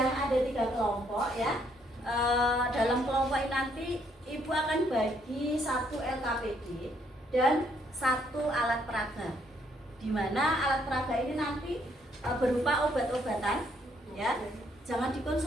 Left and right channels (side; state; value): both; normal; correlation 0.70